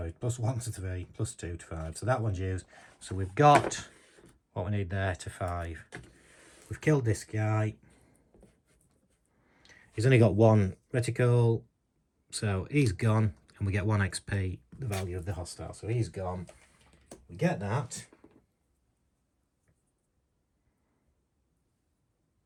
to 3. Plus 2 to 5. So that one's used. So we've got what we need there to 5. We've killed this guy. He's only got 1 reticle. So he's gone. And we get 1 XP, the value of the hostile. So he's gone. We get that.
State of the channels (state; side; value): identical; both; correlation 1.00